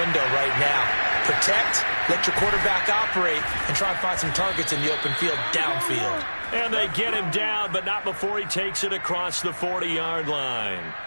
right now. Protect, let your quarterback operate, and try and find some targets in the open field downfield. And they get him down, but not before he takes it across the 40-yard line.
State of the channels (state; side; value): inverted; both; correlation -1.00